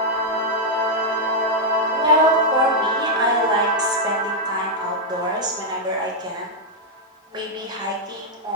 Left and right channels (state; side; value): normal; both; correlation -0.03